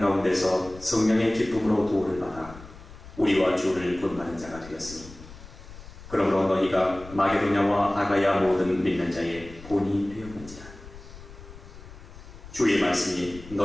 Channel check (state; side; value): noise; left; rumble, 17 dB below the sound